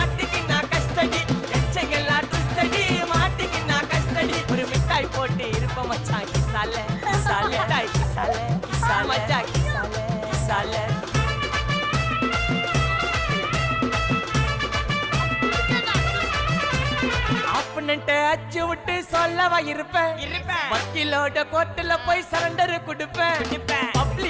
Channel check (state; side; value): identical; both; correlation 1.00